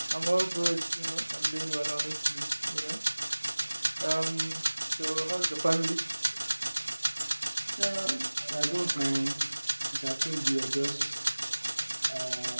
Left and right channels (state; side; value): inverted; both; correlation -1.00